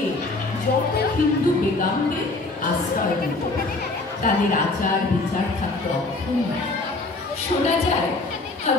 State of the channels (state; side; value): quieter; right; 3.2 dB